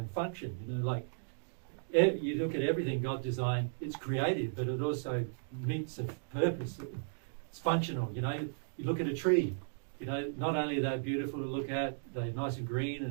function. You know, like you look at everything God designed, it's creative, but it also meets a purpose. It's functional. You know, you look at a tree, you know, not only are they beautiful to look at, they're nice and green,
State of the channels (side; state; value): left; silent; digital silence